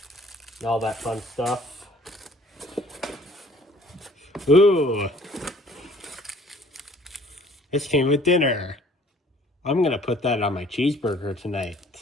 and all that fun stuff. Ooh, this came with dinner. I'm gonna put that on my cheeseburger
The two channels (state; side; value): normal; both; correlation 0.55